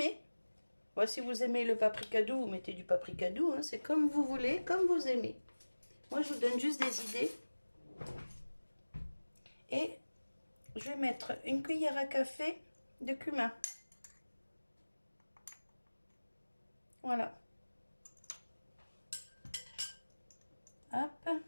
Bon, si vous aimez le paprika doux, vous mettez du paprika doux, hein, c'est comme vous voulez, comme vous aimez. Moi, je vous donne juste des idées. Et je vais mettre une cuillère à café de cumin. Voilà. Hop.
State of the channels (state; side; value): inverted; both; correlation -1.00